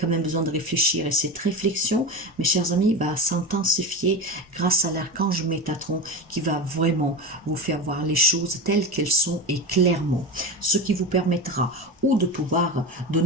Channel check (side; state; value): both; normal; correlation 0.23